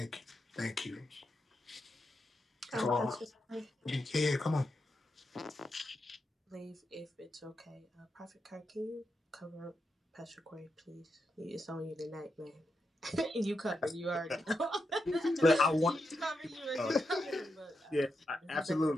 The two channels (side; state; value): both; normal; correlation 0.85